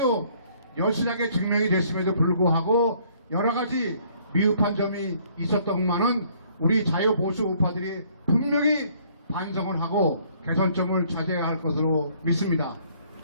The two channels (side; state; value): both; inverted; correlation -0.62